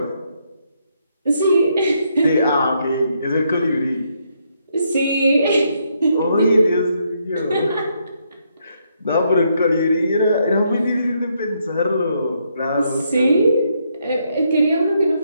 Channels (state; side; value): inverted; both; correlation -0.75